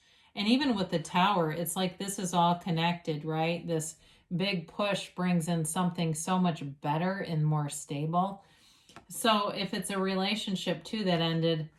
And even with the tower, it's like this is all connected, right? This big push brings in something so much better and more stable. So if it's a relationship too that ended,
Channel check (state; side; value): identical; both; correlation 1.00